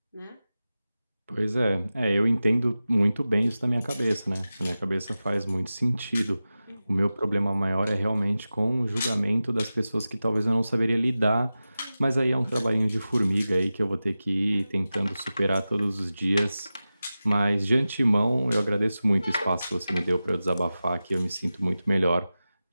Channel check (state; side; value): inverted; both; correlation -0.95